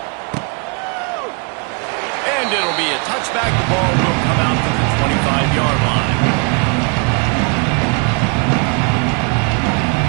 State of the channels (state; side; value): quieter; left; 36.1 dB